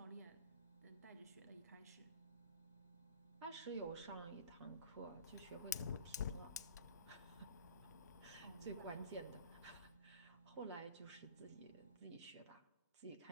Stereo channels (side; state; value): both; inverted; correlation -0.43